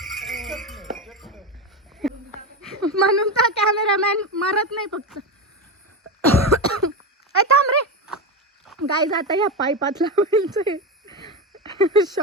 म्हणून तर कॅमेरामॅन मरत नाही फक्त. थांब रे गाईज, आता या पाईपात लावायचं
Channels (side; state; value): both; normal; correlation 0.16